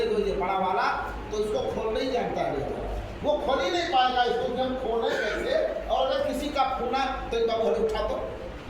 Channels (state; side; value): identical; both; correlation 1.00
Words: दो ये बड़ा वाला, तो इसको खोलना ही जानता है, वो खोल ही नहीं पाएगा इसको, हम खोले कैसे। और अगर किसी का खूना तो एक बाबू हरे उठा दो,